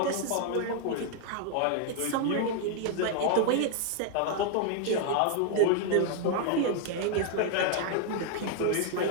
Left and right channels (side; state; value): both; different; correlation 0.00